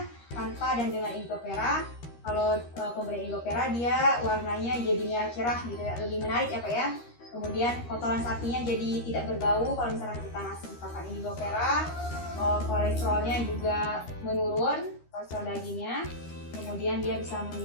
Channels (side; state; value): right; late; 13 ms